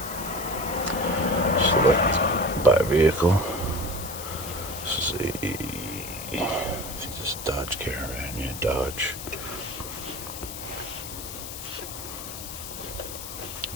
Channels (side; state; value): left; noise; hiss, 9 dB below the sound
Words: Select buy vehicle. This is I think this is Dodge Caravan. Yeah, Dodge.